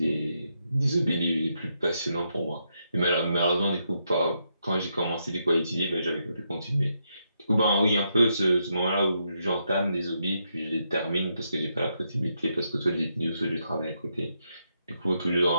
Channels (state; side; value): inverted; both; correlation -0.80